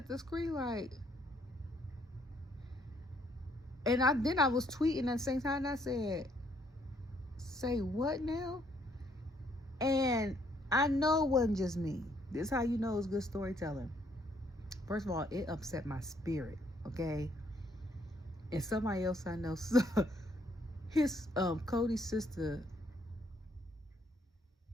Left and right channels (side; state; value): both; normal; correlation 0.68